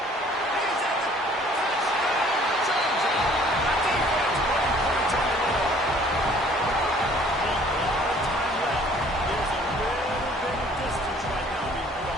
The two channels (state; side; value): normal; both; correlation 0.56